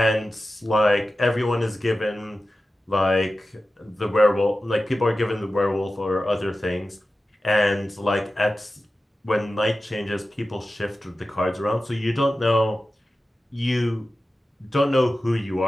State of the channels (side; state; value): both; normal; correlation 0.94